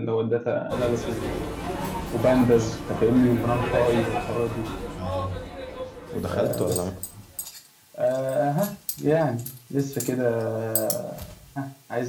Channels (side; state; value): both; identical; correlation 1.00